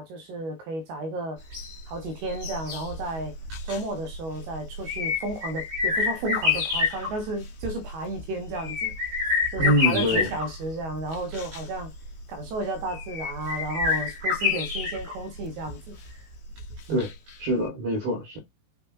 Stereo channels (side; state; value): left; late; 19 ms